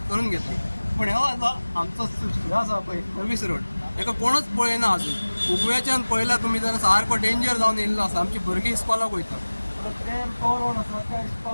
करून घेतली. पण हो आता आमचो हे आसा पळय सर्व्हिस रोड एका कोणच पळयना अजून. उगव्याच्यान पळयला तुमी जाल्यार सारको डेंजर जावन येयल्लो आसा. आमची भुरगीं इस्कॉलाक वयता ते तो रोड आसा त्या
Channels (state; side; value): inverted; both; correlation -1.00